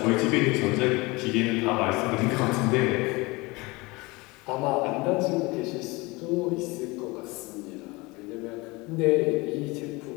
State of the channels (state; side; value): quieter; right; 24.1 dB